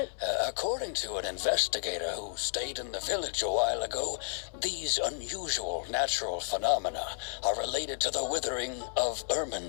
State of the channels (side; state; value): right; silent; 56 dB below the other